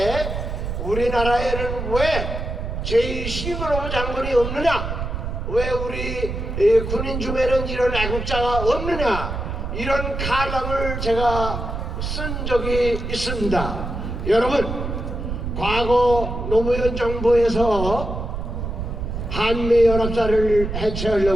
우리나라에는 왜 제2신글로브 장군이 없느냐, 왜 우리 군인 중에는 이런 애국자가 없느냐 이런 칼럼을 제가 쓴 적이 있습니다. 여러분, 과거 노무현 정부에서 한미연합사를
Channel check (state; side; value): noise; right; rumble, 4 dB below the sound